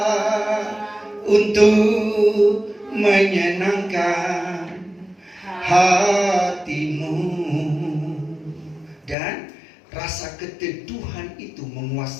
untuk menyenangkan hatimu. Dan rasa keteduhan itu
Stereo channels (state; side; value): drops out; right; at 9.2 s